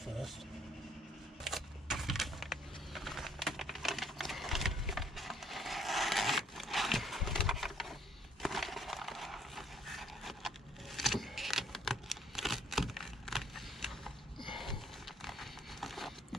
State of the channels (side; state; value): both; normal; correlation 0.63